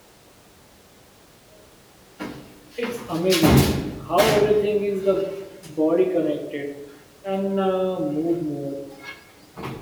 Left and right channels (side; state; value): both; identical; correlation 1.00